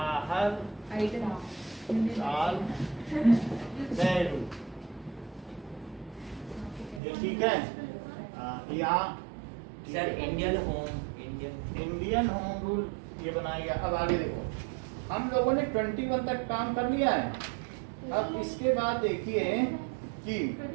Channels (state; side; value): drops out; left; at 7.0 s